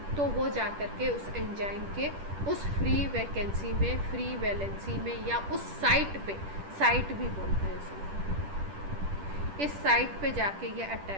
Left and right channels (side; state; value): left; late; 10 ms